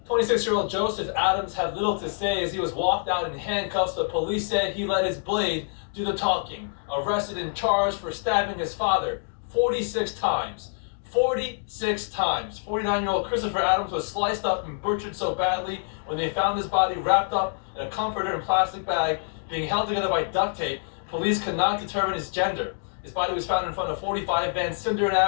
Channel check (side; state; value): right; silent; digital silence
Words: 26-year-old Joseph Adams had little to say as he was walked out in handcuffs, but police said he let his blade do the talking. Arrested and charged for stabbing his father 46 times. 46 times. 49-year-old Christopher Adams was sliced up and butchered so badly when they found his body wrapped up in a comforter and plastic bag, being held together by duct tape. Police could not determine his gender. His body was found in front of 45 Van Sinderen